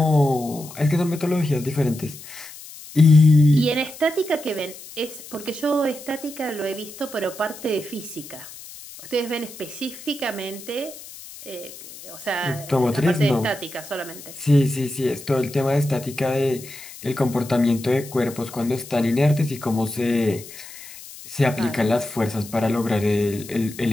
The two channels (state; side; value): noise; left; hiss, 16 dB below the sound